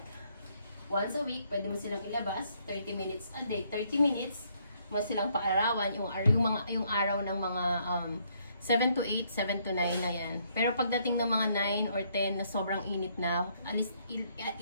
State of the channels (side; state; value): both; inverted; correlation -0.70